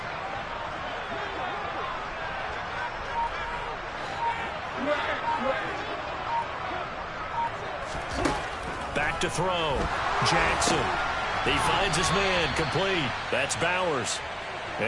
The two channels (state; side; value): identical; both; correlation 1.00